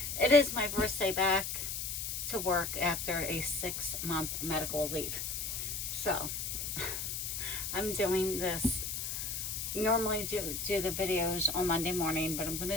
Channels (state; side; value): noise; left; hiss, 3 dB below the sound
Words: It is my first day back to work after a 6-month medical leave. So, I'm doing this, normally do the videos on Monday morning, but I'm going